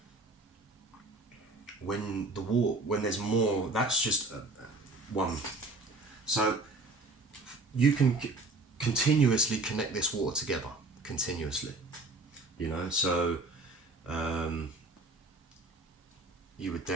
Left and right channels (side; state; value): left; quieter; 3.1 dB